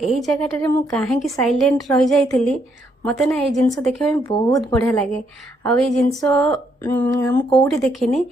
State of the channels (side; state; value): both; normal; correlation 0.74